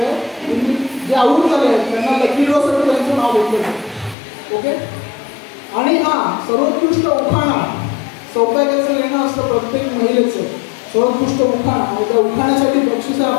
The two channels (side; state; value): right; drops out; at 4.2 s